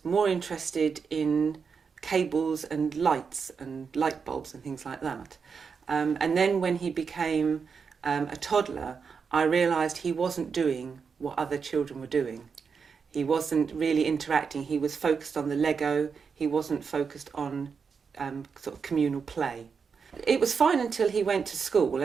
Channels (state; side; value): quieter; left; 5.8 dB